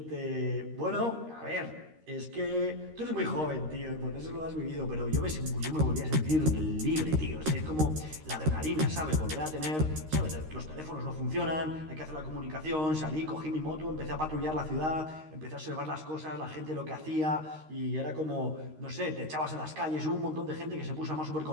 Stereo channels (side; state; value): left; late; 13 ms